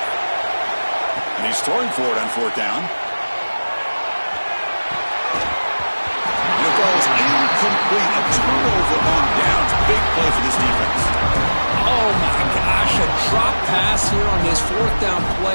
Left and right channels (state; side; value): inverted; both; correlation -1.00